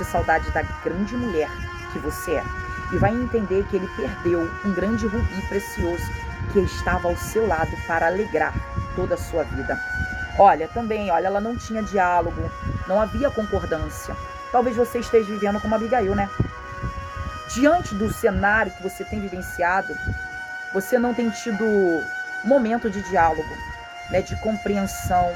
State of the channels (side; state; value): both; identical; correlation 1.00